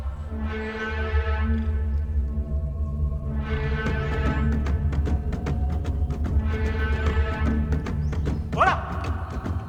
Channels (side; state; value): both; identical; correlation 1.00